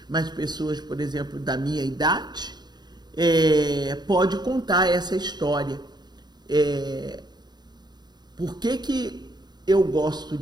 mas pessoas, por exemplo, da minha idade, pode contar essa história. Por que eu gosto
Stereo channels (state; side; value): late; left; 0.20 ms